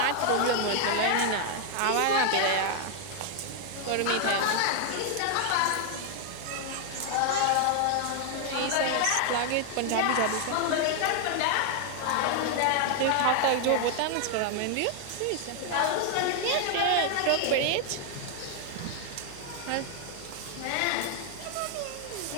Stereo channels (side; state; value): both; different; correlation 0.00